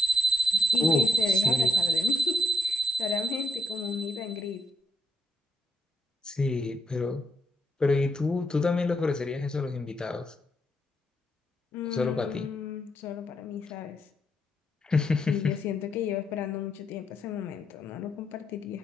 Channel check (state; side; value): normal; both; correlation 0.76